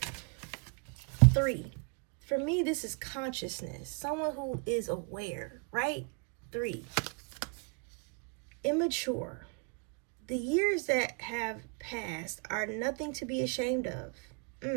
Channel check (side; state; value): left; quieter; 37.1 dB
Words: 3 For me, this is consciousness. Someone who is aware, right? 3. Immature. The years that have passed are nothing to be ashamed of.